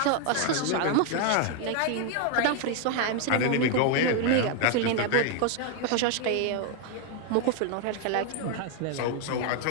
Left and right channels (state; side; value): different; both; correlation 0.01